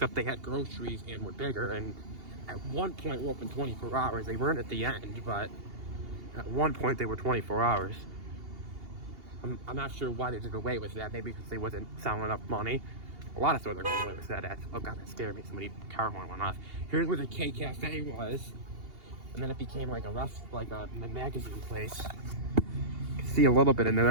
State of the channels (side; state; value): left; late; 2.8 ms